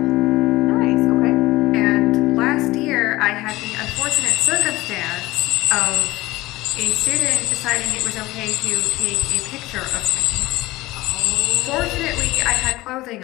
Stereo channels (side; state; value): right; quieter; 18.9 dB